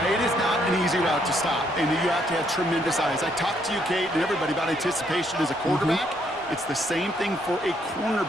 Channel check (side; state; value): both; normal; correlation 0.71